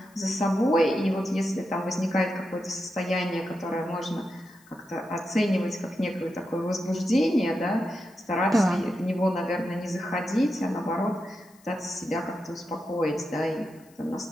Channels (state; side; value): noise; left; hiss, 29 dB below the sound